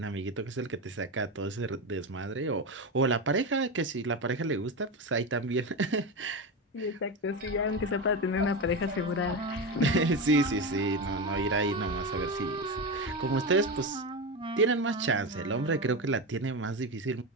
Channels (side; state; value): both; normal; correlation 0.17